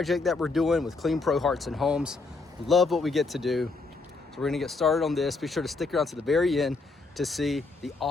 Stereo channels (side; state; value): right; quieter; 3.8 dB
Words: that we're doing with Clean Pro Hearts and Homes. Love what we get to do. So we're gonna get started on this. Be sure to stick around to the very end to see the